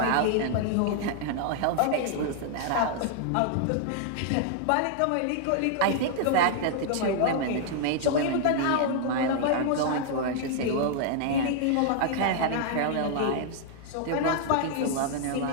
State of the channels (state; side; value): different; both; correlation 0.00